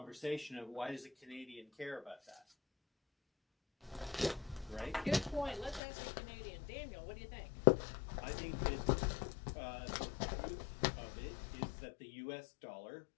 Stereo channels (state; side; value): drops out; right; at 5.8 s